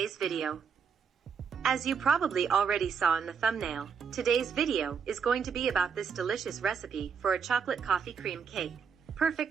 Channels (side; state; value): left; quieter; 6.5 dB